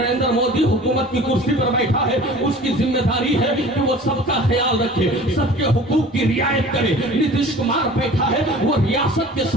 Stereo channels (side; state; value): both; normal; correlation 0.44